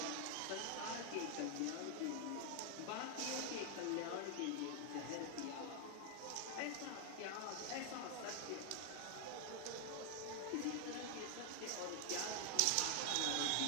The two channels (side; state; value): both; different; correlation 0.00